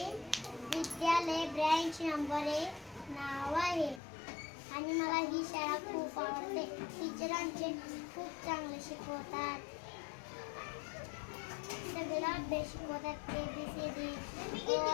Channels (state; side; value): drops out; right; at 4.0 s